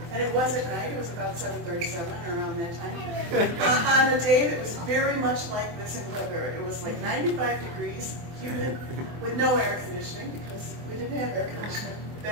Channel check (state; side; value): late; left; 24 ms